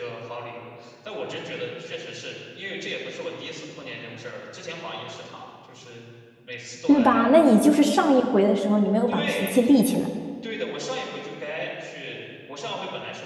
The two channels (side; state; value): both; identical; correlation 1.00